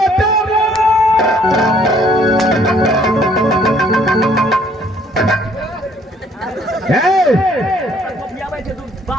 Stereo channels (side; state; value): both; normal; correlation 0.62